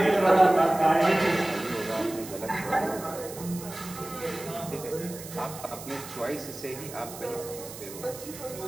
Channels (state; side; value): noise; right; hiss, 13 dB below the sound